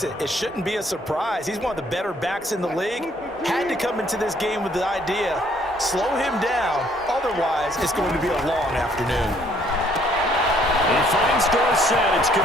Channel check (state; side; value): normal; both; correlation 0.64